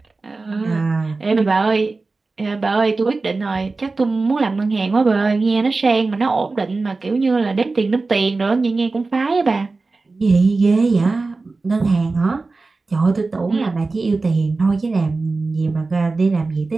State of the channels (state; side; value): quieter; left; 3.7 dB